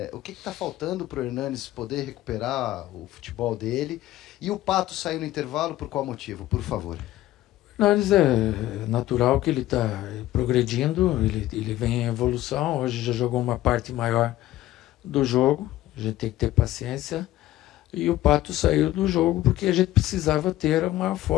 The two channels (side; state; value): right; quieter; 15.1 dB